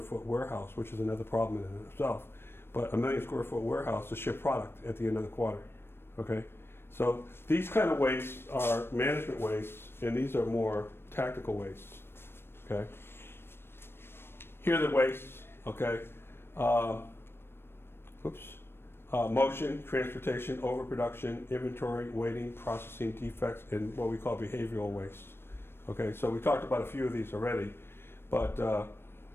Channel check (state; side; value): late; right; 0.11 ms